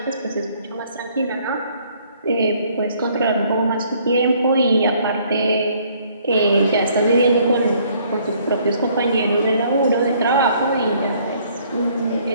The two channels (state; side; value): inverted; both; correlation -0.63